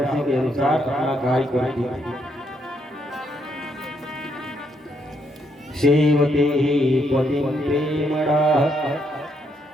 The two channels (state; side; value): normal; both; correlation 0.75